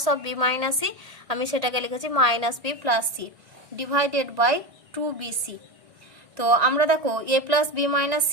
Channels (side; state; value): left; late; 1.7 ms